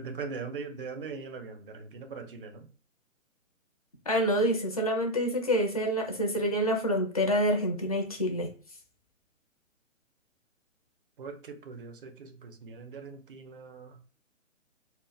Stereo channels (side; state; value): both; normal; correlation 0.03